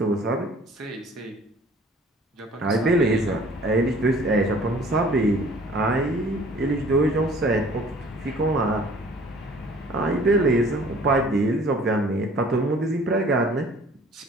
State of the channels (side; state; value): both; normal; correlation 0.52